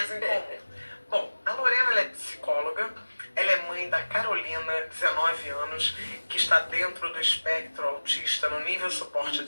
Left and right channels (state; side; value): inverted; both; correlation -1.00